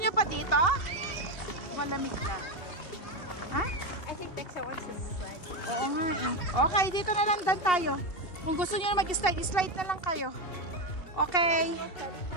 niyo pa dito? Malamig na. Ha? I think Dexa wants to slide. Oo nga eh. Okay, dito na lang dan tayo. Kung gusto niyo na mag-slide, slide na lang kayo. Okay.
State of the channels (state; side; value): late; right; 2.7 ms